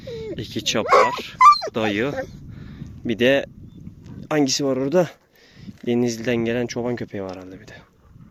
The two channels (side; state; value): both; identical; correlation 1.00